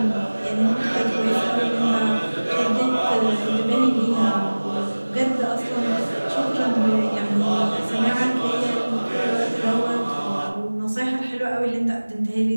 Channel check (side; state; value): both; inverted; correlation -1.00